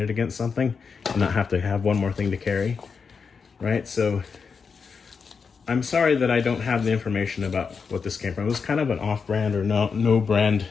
against something and not have to have one more thing to carry, right? So I'm sorry that I don't have the information about what this came from. It was kind of an off-brand or no brand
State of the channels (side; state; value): right; quieter; 5.6 dB